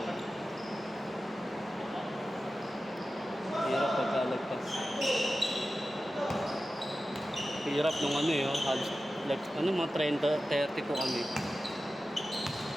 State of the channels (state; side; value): normal; both; correlation 0.94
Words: Hirap pagkalagpas. Hirap nung ano eh, halos, like, mga 30 po kami.